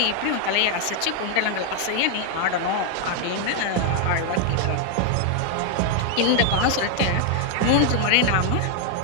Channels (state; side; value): different; both; correlation 0.00